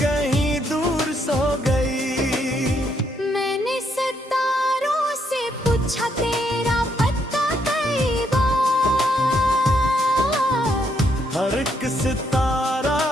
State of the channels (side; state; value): both; normal; correlation 0.74